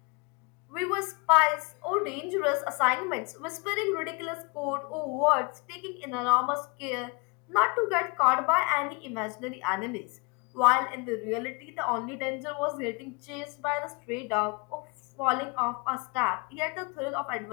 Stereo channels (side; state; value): right; quieter; 30.0 dB